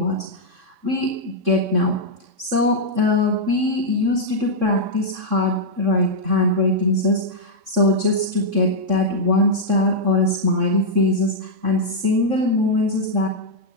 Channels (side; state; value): left; late; 3.6 ms